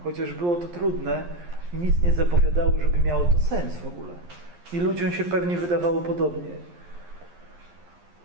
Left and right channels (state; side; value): late; left; 11 ms